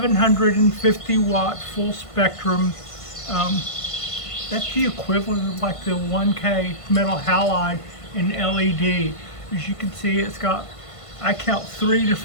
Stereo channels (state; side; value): late; right; 1.5 ms